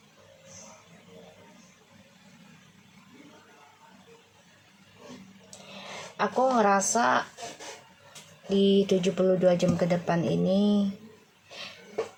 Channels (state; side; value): identical; both; correlation 1.00